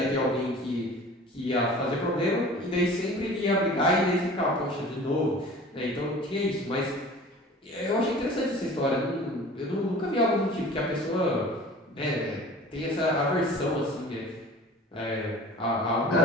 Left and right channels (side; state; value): both; normal; correlation 0.43